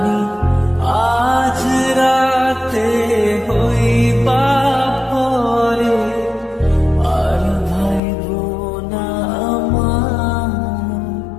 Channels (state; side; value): drops out; right; at 8.0 s